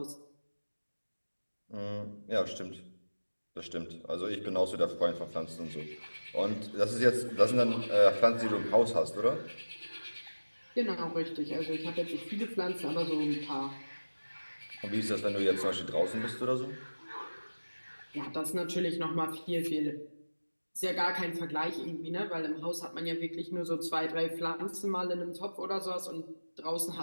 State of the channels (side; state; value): both; inverted; correlation -1.00